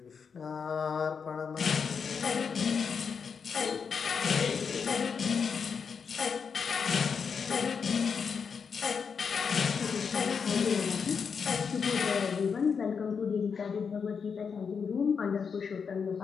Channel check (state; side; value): quieter; right; 6.1 dB